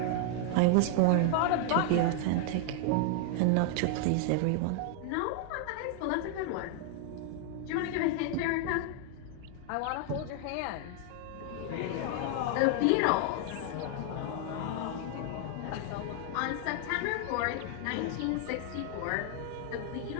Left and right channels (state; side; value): different; both; correlation 0.00